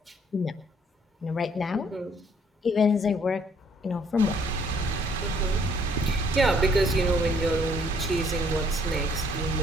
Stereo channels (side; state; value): both; normal; correlation 0.63